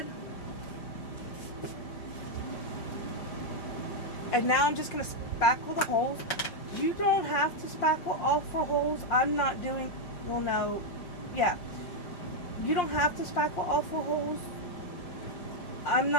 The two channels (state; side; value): late; right; 5.6 ms